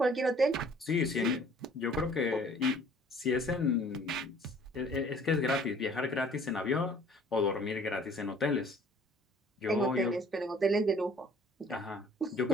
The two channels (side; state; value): both; normal; correlation 0.54